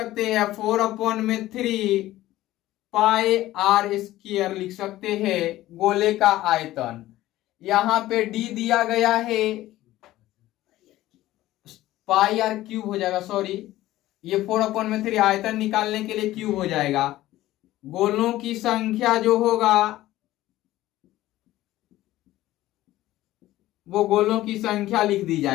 हैं 4/3 पाई आर स्क्वायर लिख सकते हैं गोले का आयतन। यहां पे डी दिया गया है, पाई आर क्यूब हो जाएगा, सॉरी ये 4/3 आयतन निकालने के लिए क्यूब हो जाएगा। गोलों की संख्या जो होगा वो गोलों की संख्या लिख दी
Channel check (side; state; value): right; quieter; 15.6 dB